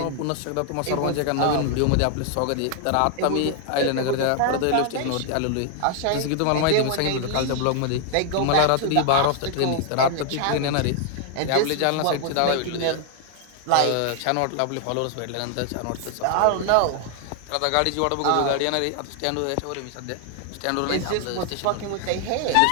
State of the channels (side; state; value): both; different; correlation 0.00